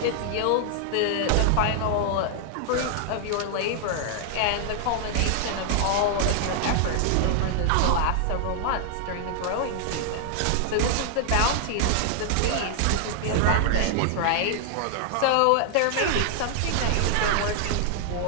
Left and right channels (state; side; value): different; both; correlation 0.00